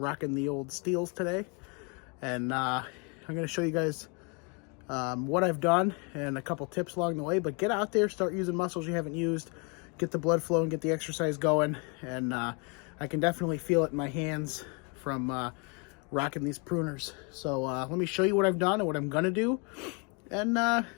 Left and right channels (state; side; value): quieter; right; 33.5 dB